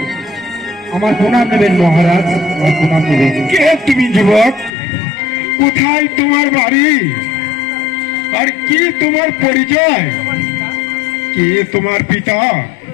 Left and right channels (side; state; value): right; drops out; at 4.7 s